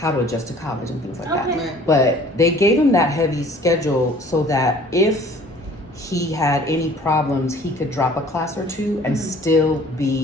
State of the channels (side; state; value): both; normal; correlation 0.52